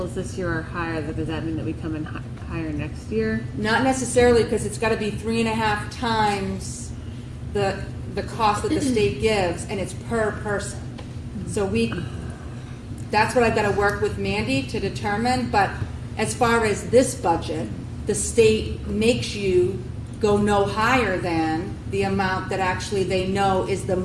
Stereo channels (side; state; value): both; identical; correlation 1.00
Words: this year are higher, then does that mean that we come in higher next year? Not necessarily, because it's got to be 3.5 times the cost that the state gives, and it's per person. So that's what I've got to work with Mandy to determine. But as far as this budget, the state makes you go no higher than the amount that actually they know is the